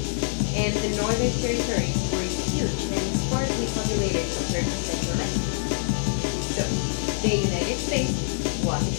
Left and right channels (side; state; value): right; silent; 62 dB below the other